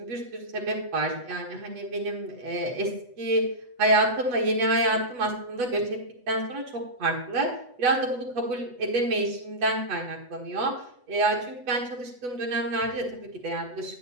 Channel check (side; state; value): left; late; 8.1 ms